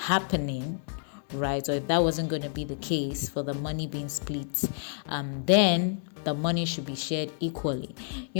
right, or if that wasn't going to be the case for the money being split, then the money should be shared equally.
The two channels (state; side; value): silent; right; digital silence